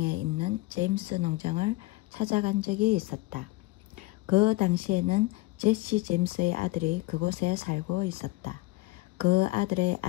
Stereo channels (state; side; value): quieter; right; 20.4 dB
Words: 있는 제임스 농장을 찾아간 적이 있었다. 그 당시에는 제시 제임스의 아들이 그곳에 살고 있었다. 그 아들의